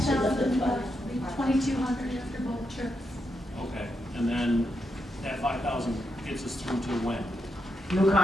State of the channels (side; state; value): both; normal; correlation 0.83